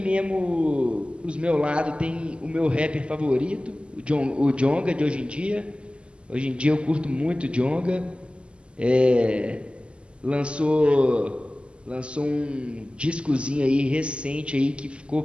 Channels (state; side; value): late; left; 0.053 ms